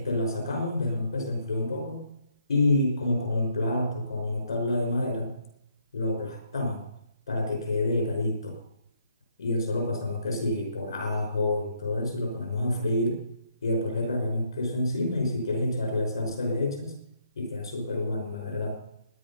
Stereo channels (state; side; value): inverted; both; correlation -0.72